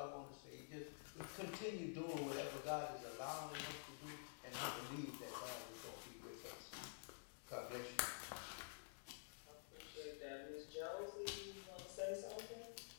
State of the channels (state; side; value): silent; right; digital silence